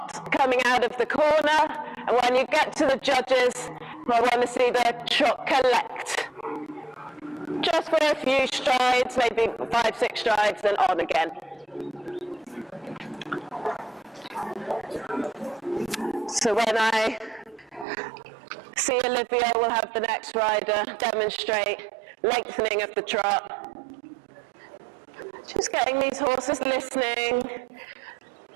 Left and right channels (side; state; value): left; drops out; at 17.9 s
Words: coming out of the corner, and when you get to the judges, we're going to see their trot collect. Just for a few strides, maybe 5-6 strides, then on again. So when I see Olivia, we'll have the next rider demonstrate lengthening of the trot. Just getting these horses listening.